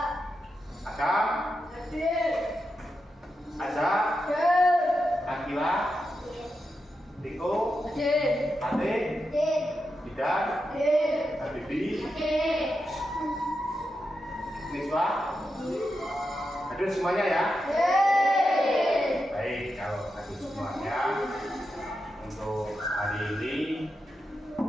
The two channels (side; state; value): both; normal; correlation 0.87